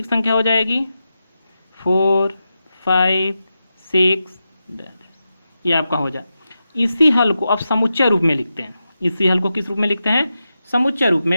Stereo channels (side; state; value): both; inverted; correlation -0.90